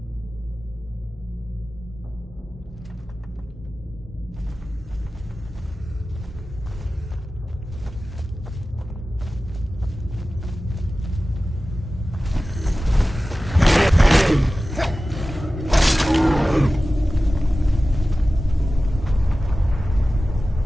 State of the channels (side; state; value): both; normal; correlation 0.96